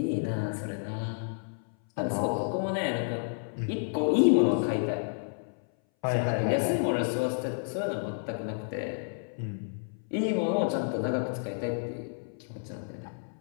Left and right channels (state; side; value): silent; right; 57 dB below the other